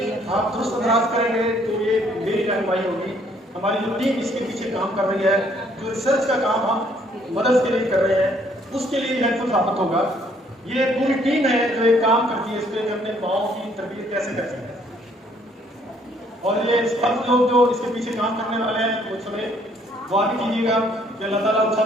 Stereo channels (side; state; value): both; normal; correlation 0.64